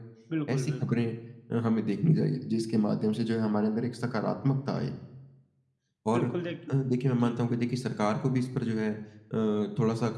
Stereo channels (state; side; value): identical; both; correlation 1.00